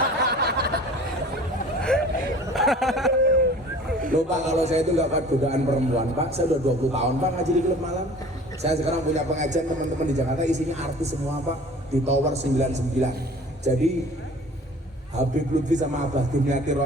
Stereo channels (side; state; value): both; normal; correlation 0.46